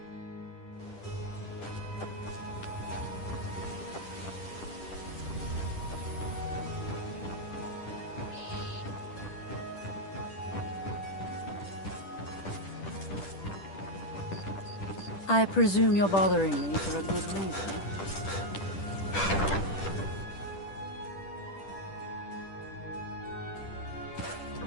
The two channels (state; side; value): late; right; 10 ms